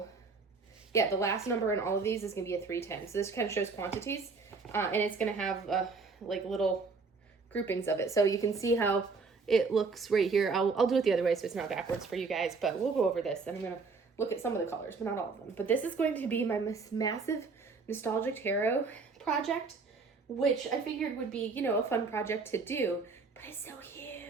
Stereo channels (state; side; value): quieter; left; 4.5 dB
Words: yeah, the last number in all of these is going to be a 310. So this kind of shows quantities, and it's going to have like little groupings of it. So you can see how it looks right here. I'll do it the other way so it's not backwards for you guys, but we'll go over this and I'm going to look at some of the colors, but not all of them. But this is going to be my massive nostalgic tarot project, which I figured would be, you know, a fun project to do, but it's so